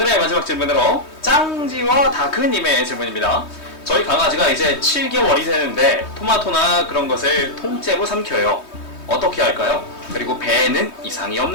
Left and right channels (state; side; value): late; right; 3.2 ms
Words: 마지막 질문으로 짱지와 다크님의 질문입니다. 저희 강아지가 이제 7개월이 되는데 토마토나 그런 것을 통째로 삼켜요. 어떻게 할까요? 그리고 배에는 이상이